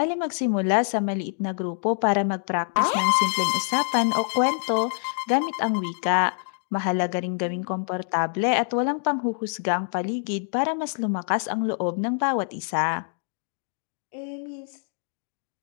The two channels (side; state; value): right; silent; digital silence